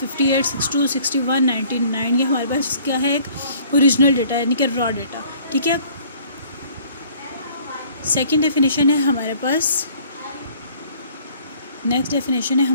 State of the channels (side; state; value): both; inverted; correlation -0.56